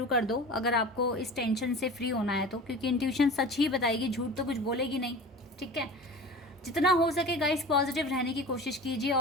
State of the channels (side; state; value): both; normal; correlation 0.36